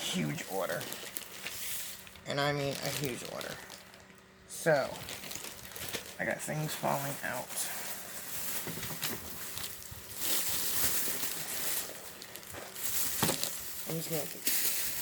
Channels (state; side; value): identical; both; correlation 1.00